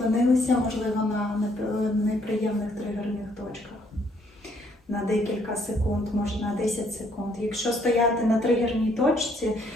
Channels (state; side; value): normal; both; correlation 0.67